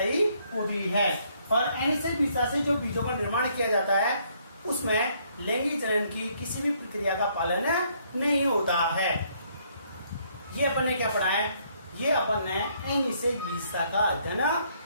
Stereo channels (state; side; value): inverted; both; correlation -0.68